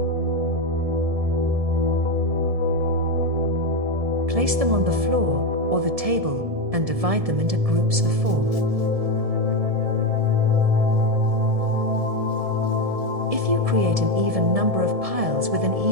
Place them on the floor or the table and divide them into groups of 4. If you create an even number of piles with an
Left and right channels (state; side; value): late; left; 1.7 ms